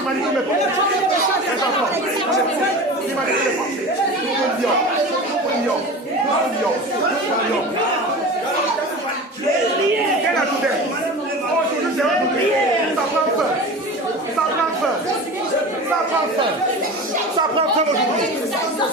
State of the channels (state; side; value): normal; both; correlation 0.32